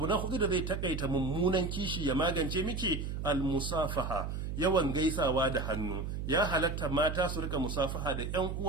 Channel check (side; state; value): right; noise; hum, 4 dB below the sound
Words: na hudu da zai takaita mummunan kishi ya magance miki, al-musafaha. Yawan gaisawa da hannu. Ya halatta mata su rika musafaha da ƴan